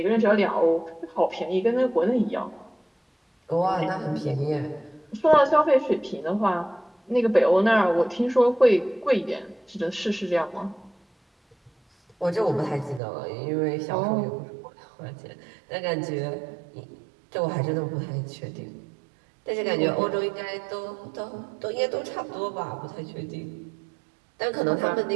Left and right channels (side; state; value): left; drops out; at 13.0 s